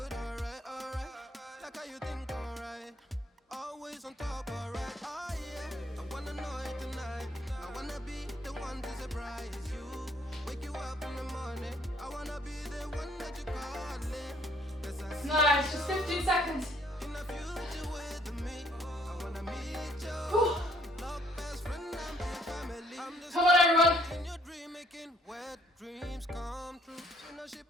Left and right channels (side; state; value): both; normal; correlation 0.63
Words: On top, alright, oh yeah. I wanna know it tonight. I wanna be the one to surprise you. Wake you up in the morning. I wanna be the one that you call in. Nice, just 15 seconds. In the future with me, I wanna meet you. Love, best friend, and family. Come on, everyone. In your dream, making wet dreams come true. You know she